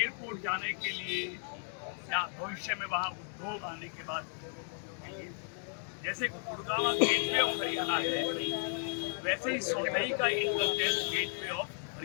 जाने के लिए या भविष्य में वहाँ उद्योग आने के बाद जैसे गुड़गांव गेटवे ऑफ हरियाणा है, वैसे ही सोलई का इंटरचेंज गेटवे ऑफ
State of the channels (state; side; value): silent; right; 55 dB below the other